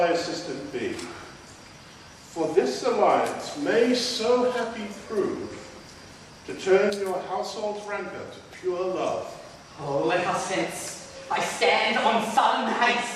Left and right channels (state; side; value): identical; both; correlation 1.00